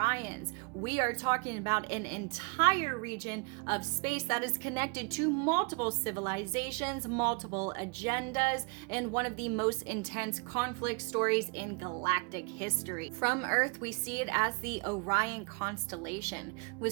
we are talking about an entire region of space that is connected to multiple civilizations, multiple agendas, and one of the most intense conflict stories in galactic history. From Earth, we see it as the Orion constellation,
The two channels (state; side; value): quieter; left; 32.3 dB